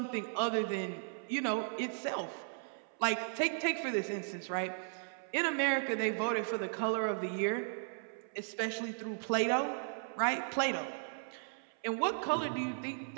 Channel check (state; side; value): silent; left; 54 dB below the other